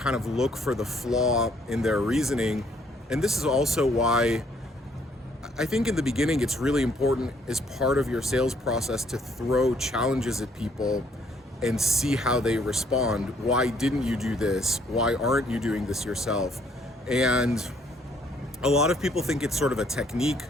of look for the flaw in their reasoning. And this is also why I think in the beginning it's really important as part of your sales process to throw challenges at people and see how they respond. Why didn't you do this? Why aren't you doing this yourself? And a lot of people think it's sort of a technique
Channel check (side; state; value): both; normal; correlation 0.66